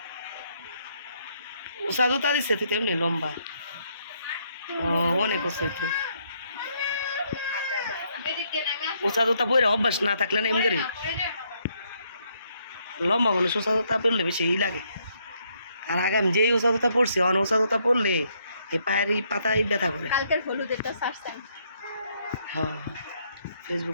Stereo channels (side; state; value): both; inverted; correlation -0.72